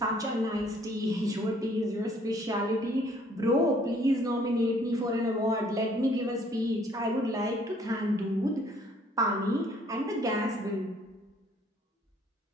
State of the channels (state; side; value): normal; both; correlation 0.61